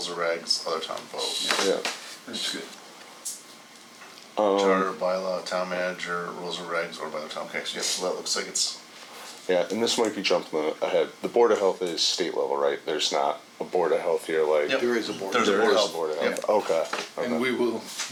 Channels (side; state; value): both; identical; correlation 1.00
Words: and regs, other town vote. Yeah. That's good. Charter, Bylaw, town manager, rules and regs, or by the town. Okay, so, yeah, so that looks like it's. Yeah, and this might be jumping ahead. The Board of Health is state level, right? There's not a Board of Health here, like. Yep. There is a board. There's a There Board of is Health. a Board of Yep. Health. Okay. And we will